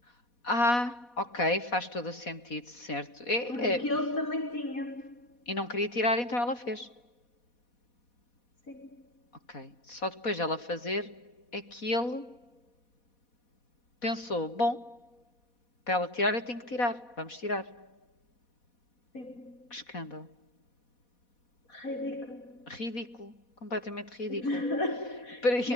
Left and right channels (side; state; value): right; late; 4.1 ms